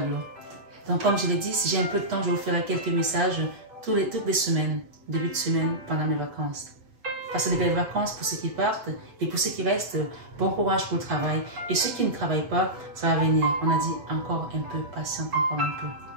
Donc comme je l'ai dit, si j'ai un peu de temps, je vous ferai quelques messages toutes les semaines, début de semaine, pendant mes vacances. Passez de belles vacances pour ceux qui partent et pour ceux qui restent, bon courage pour le travail. Et ceux qui ne travaillent pas, ça va venir. On a dit encore un peu, patiente encore un peu.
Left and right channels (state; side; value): late; left; 7.9 ms